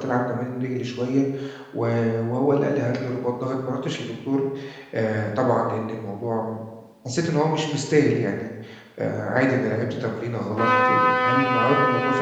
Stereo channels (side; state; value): both; identical; correlation 1.00